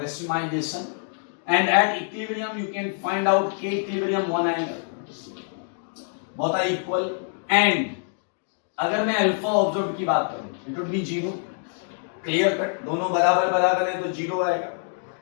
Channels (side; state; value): right; silent; 62 dB below the other